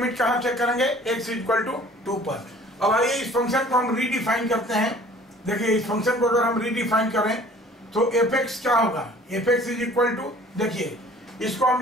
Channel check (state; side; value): normal; both; correlation 0.51